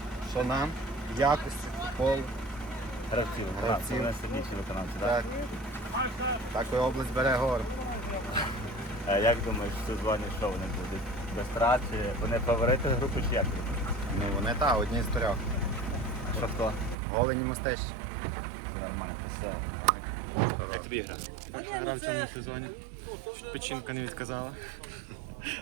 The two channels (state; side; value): drops out; left; at 16.9 s